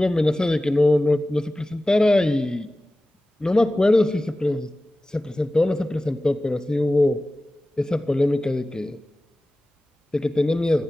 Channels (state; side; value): normal; both; correlation 0.96